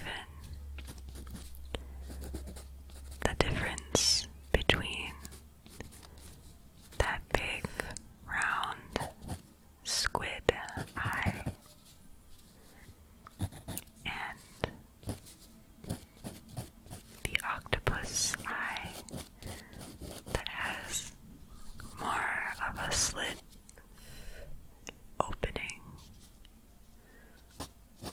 the difference between that big round squid eye and the octopus eye that has more of a slit opening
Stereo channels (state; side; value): identical; both; correlation 1.00